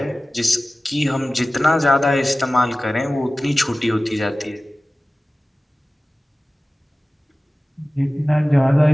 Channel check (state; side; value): normal; both; correlation 0.97